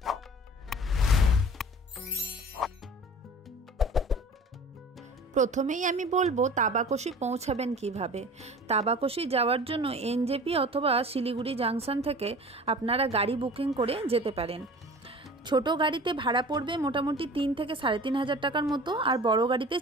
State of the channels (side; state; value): both; normal; correlation 0.42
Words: প্রথমেই আমি বলবো তাবাকোশি পৌঁছাবেন কিভাবে। তাবাকোশি যাওয়ার জন্য এনজেপি অথবা শিলিগুড়ি জাংশন থেকে আপনারা গাড়ি বুকিং করে যেতে পারেন। ছোট গাড়িতে ভাড়া পড়বে মোটামুটি 3 থেকে 3,500 টাকার মতো, আর বড় গাড়িতে